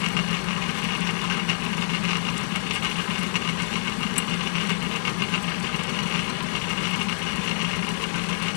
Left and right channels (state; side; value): silent; right; digital silence